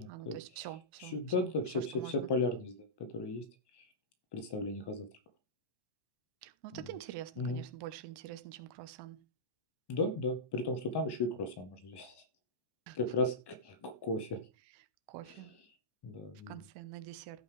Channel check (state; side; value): late; right; 1.1 ms